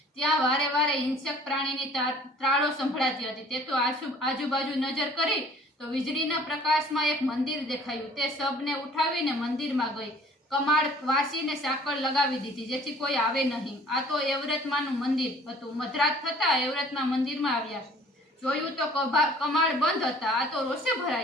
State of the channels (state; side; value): normal; both; correlation 0.53